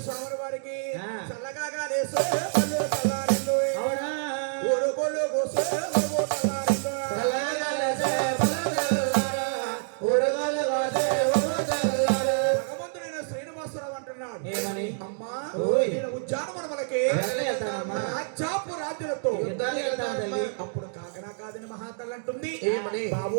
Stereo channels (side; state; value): left; silent; digital silence